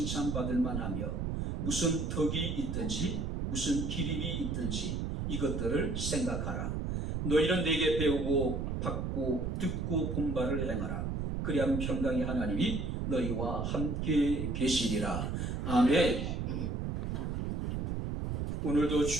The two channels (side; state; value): right; noise; rumble, 1 dB below the sound